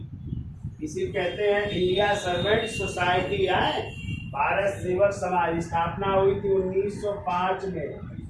इसी कहते हैं इंडिया सर्वेंट सोसाइटी है। भारत सेवक समाज स्थापना हुई थी 1905 में।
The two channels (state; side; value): identical; both; correlation 1.00